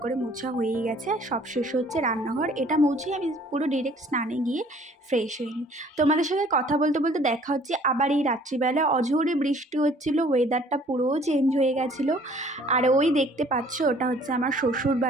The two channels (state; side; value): normal; both; correlation 0.56